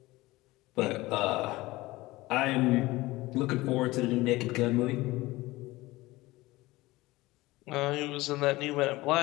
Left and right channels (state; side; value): quieter; right; 19.7 dB